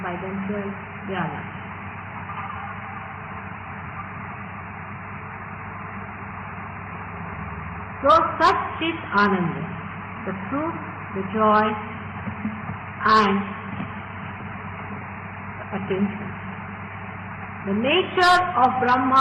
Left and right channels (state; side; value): identical; both; correlation 1.00